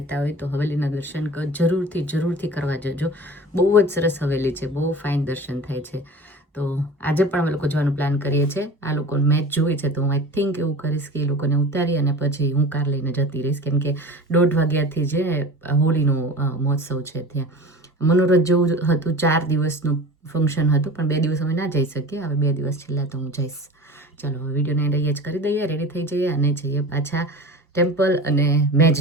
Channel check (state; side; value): normal; both; correlation 0.37